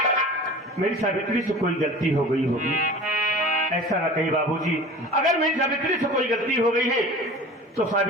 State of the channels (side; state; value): both; normal; correlation 0.38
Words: मेरी सावित्री से कोई गलती हो गई होगी, ऐसा ना कहीं बाबूजी। अगर मेरी सावित्री से कोई गलती हो गई है तो